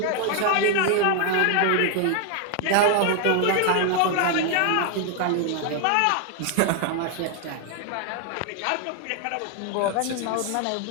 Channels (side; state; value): both; different; correlation 0.00